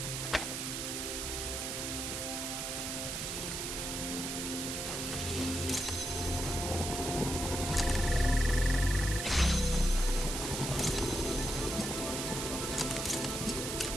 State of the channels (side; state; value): right; noise; hiss, 3 dB below the sound